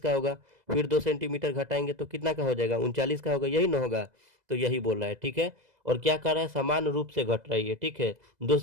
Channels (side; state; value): left; late; 2.0 ms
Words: का होगा। फिर 2 सेंटीमीटर घटाएंगे तो कितना का हो जाएगा, 39 का होगा, यही ना होगा। तो यही बोल रहा है, ठीक है। और क्या कर रहा है, समान रूप से घट रही है, ठीक है। 2